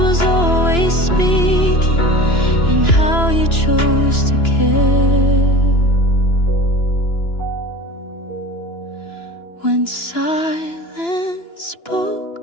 always speaking in how you chose to care. When silence spoke,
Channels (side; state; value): right; late; 2.9 ms